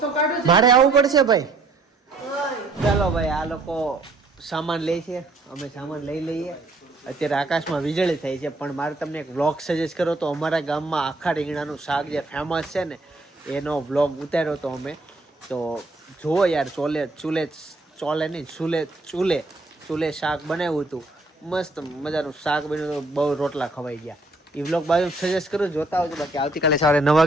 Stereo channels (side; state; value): left; quieter; 3.0 dB